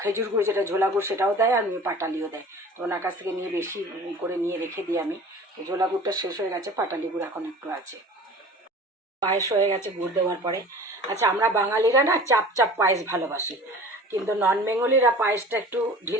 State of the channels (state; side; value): normal; both; correlation 0.42